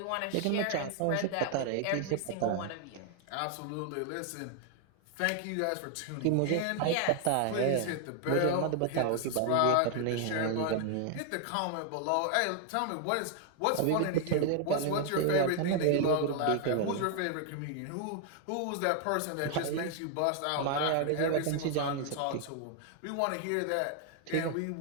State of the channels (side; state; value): both; different; correlation 0.00